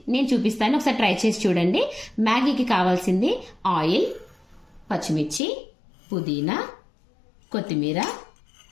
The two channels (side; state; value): right; drops out; at 5.4 s